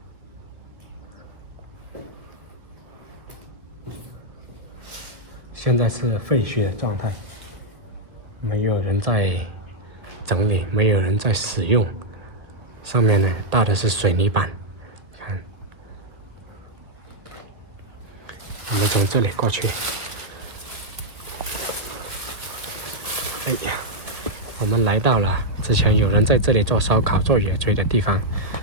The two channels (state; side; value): late; left; 1.8 ms